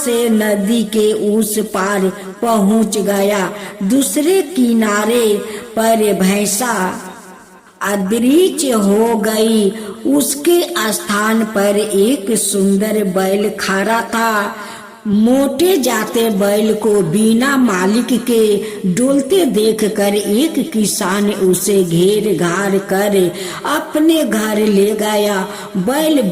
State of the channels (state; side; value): identical; both; correlation 1.00